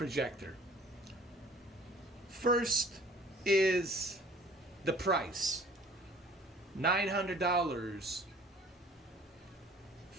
First is the price. $900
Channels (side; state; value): both; normal; correlation 0.51